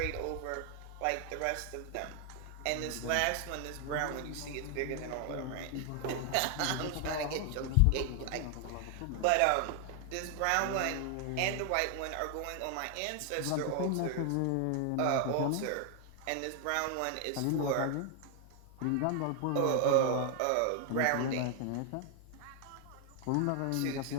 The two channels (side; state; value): both; different; correlation 0.00